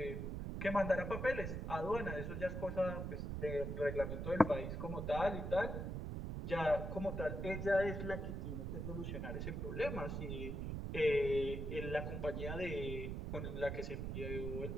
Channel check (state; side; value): noise; right; rumble, 3 dB below the sound